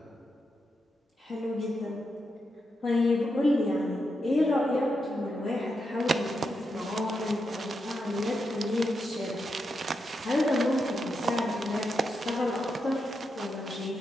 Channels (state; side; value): normal; both; correlation 0.85